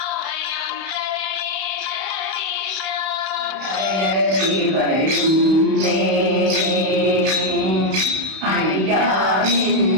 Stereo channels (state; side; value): late; left; 31 ms